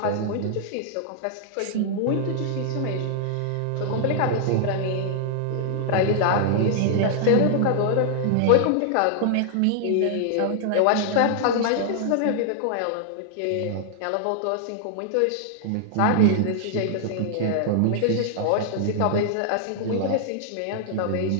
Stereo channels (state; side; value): different; both; correlation -0.01